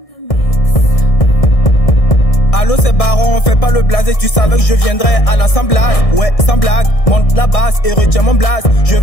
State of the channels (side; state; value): right; late; 1.6 ms